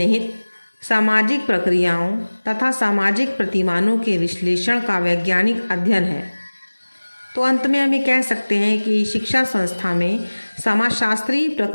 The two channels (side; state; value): both; inverted; correlation -1.00